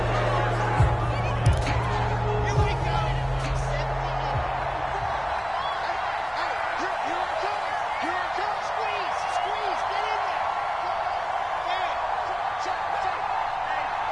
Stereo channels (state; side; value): identical; both; correlation 1.00